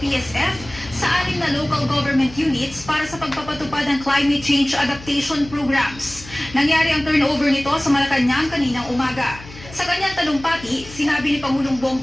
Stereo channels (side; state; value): left; noise; hum, 17 dB below the sound